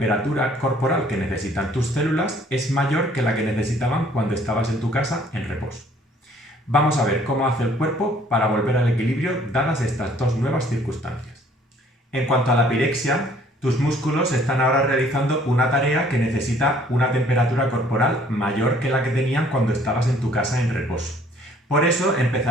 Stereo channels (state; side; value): normal; both; correlation 0.58